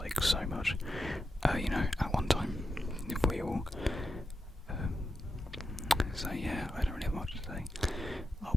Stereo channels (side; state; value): both; normal; correlation 0.89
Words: so much, at one time, if we all, so yeah, I don't really have much to say.